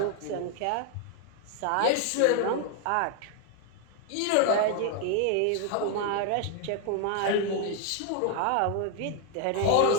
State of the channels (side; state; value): both; different; correlation 0.00